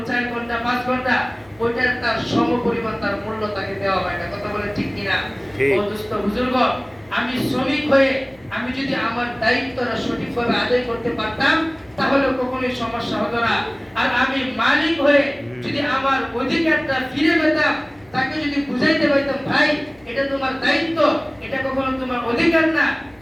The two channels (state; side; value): noise; left; hum, 29 dB below the sound